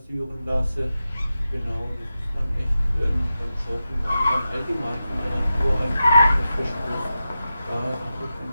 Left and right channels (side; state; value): both; inverted; correlation -0.91